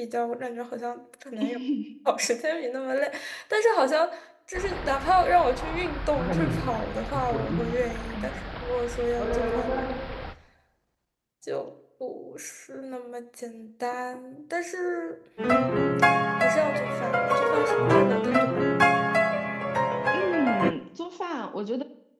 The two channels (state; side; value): identical; both; correlation 1.00